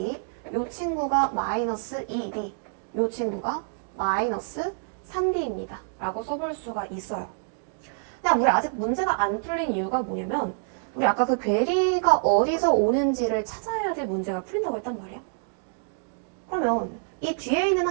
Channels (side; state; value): left; silent; digital silence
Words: 이 친구가 마이너스 2D, 이 친구가 마이너스 3D입니다. 라고 써볼 수가 있어요. 그냥 우리 아직 문제가 안 풀린 이유가 뭐냐면 우리 아까 그 괴리가 어디서 오는지를 찾아야지 문제가 풀린다고 했단 말이야. 그러면 이 뒤에 있는